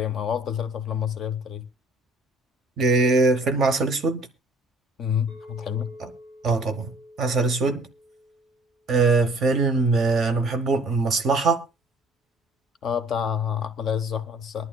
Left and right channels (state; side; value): normal; both; correlation 0.54